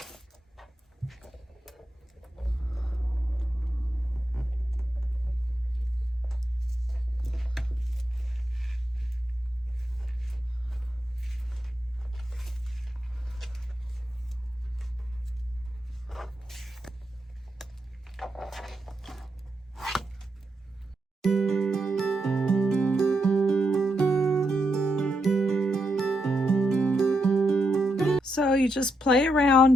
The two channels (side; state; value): both; normal; correlation 0.83